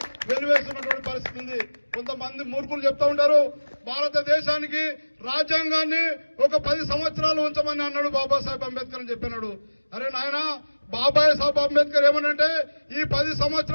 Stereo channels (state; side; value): inverted; both; correlation -1.00